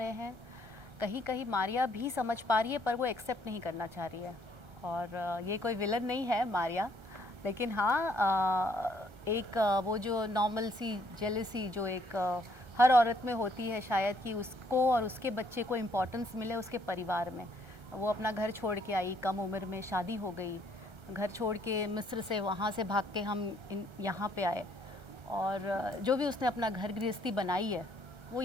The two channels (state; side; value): late; left; 1.3 ms